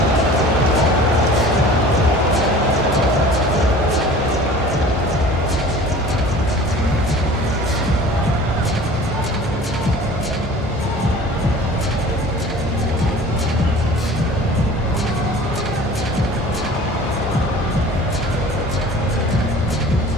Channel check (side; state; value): both; normal; correlation 0.44